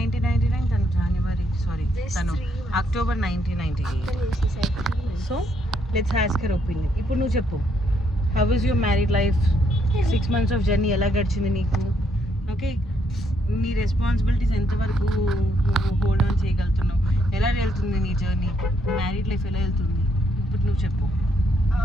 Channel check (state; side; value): normal; both; correlation 0.74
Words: తను October 1998. So let's ask her opinion. ఇప్పుడు నువ్వు చెప్పు, how is your married life? 6 months of journey ఎలా గడిచింది నీకు? ఓకే, నీ రెస్పాన్సిబిలిటీస్ ఎంతవరకు హోల్డ్ ఆన్ చేయగలుగుతున్నావు? ఎలా వెళ్తుంది నీ జర్నీ? మ్యారీడ్ లైఫ్ ఎలా వెళ్తుంది ఇప్పుడు నువ్వు చెప్పు.